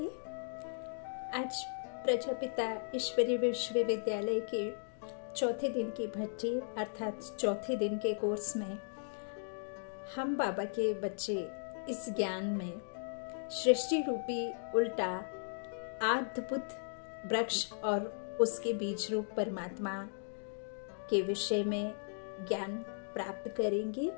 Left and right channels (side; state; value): right; silent; digital silence